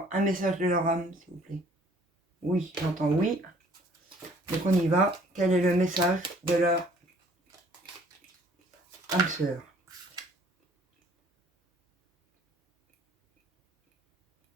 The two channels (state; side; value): normal; both; correlation 0.57